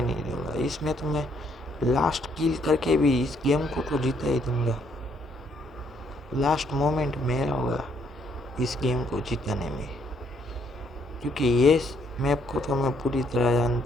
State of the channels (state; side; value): normal; both; correlation 0.70